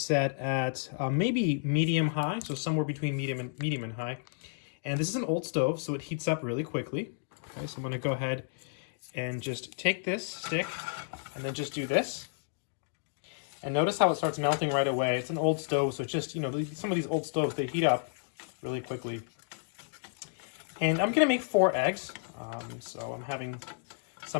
at maybe medium-high, so somewhere between medium and high. And this is an old stove, so it heats up really quickly. Okay, so I'm going to go ahead and just take this stick and then just do this. And notice how it starts melting right away. It's an old stove, so it's just, you know, some of these old stoves, they heat up really quickly. And I'm going to make 4 eggs. So I'm having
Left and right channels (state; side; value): silent; right; digital silence